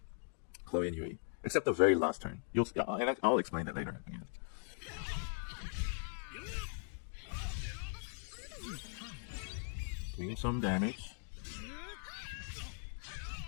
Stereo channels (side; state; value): right; silent; 51 dB below the other